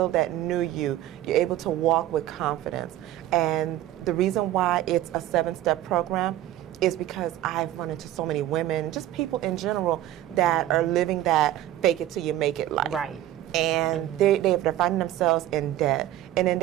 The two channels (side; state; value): left; quieter; 13.5 dB